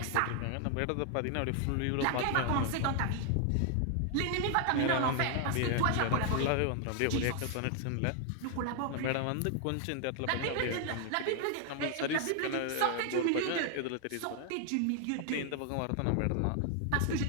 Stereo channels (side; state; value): both; different; correlation 0.00